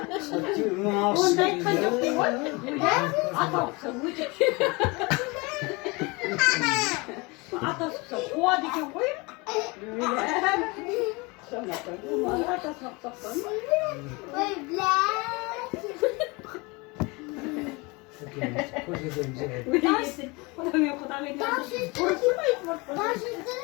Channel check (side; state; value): right; quieter; 26.4 dB